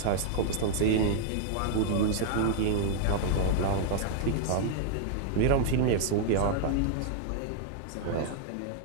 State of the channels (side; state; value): both; different; correlation -0.01